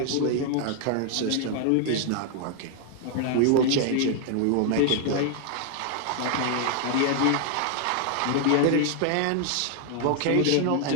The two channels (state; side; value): different; both; correlation 0.00